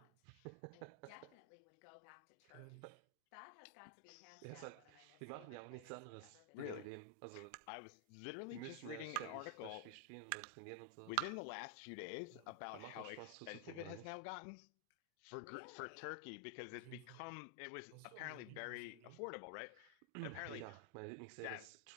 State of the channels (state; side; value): different; both; correlation 0.00